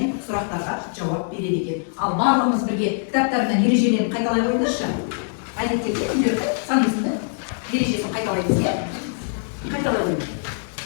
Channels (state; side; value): silent; right; digital silence